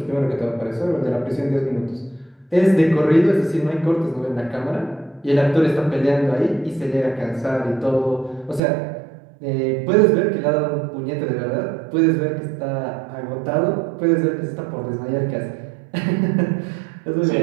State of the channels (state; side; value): drops out; left; at 8.6 s